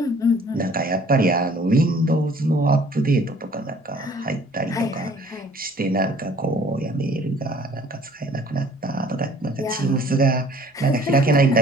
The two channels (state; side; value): normal; both; correlation 0.55